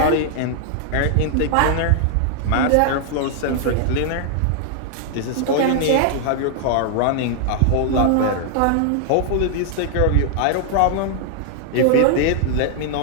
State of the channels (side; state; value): both; different; correlation 0.00